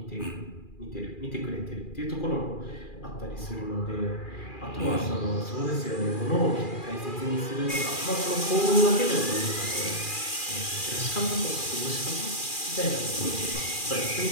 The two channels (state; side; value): late; right; 2.4 ms